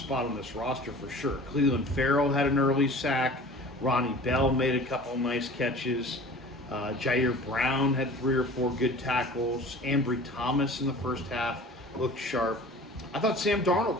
on this roster for sure. Cleveland Farrell had an early sack. Ronnie Bell made a couple nice catches. Jair Brown had 3 or 4 good tackles. Ambry Thomas in the first half looked sharp. I thought Sam Darnold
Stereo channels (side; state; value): both; normal; correlation 0.43